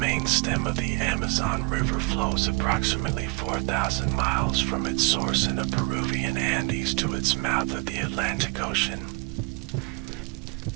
stem of the Amazon River flows approximately 4,000 miles from its source in the Peruvian Andes to its mouth at the Atlantic Ocean.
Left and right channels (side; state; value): left; quieter; 28.5 dB